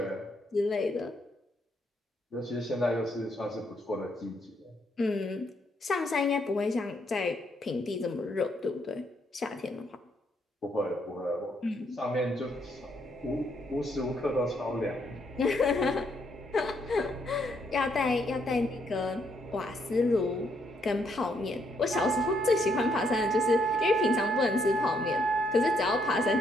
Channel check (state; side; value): normal; both; correlation 0.73